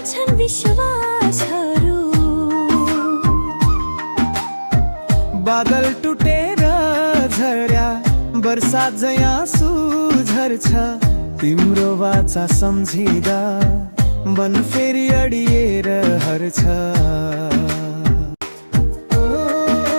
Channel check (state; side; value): inverted; both; correlation -1.00